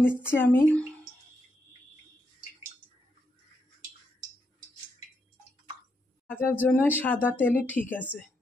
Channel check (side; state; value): both; normal; correlation 0.81